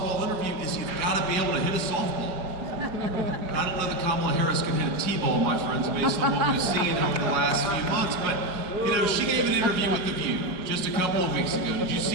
interview is you've got to be able to hit a softball. I don't know that Kamala Harris can hit a T-ball, my friends, based on what we've seen over the last few months. But, you know, she gave an interview with The View just a couple of weeks ago. Did you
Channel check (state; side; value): late; left; 4.9 ms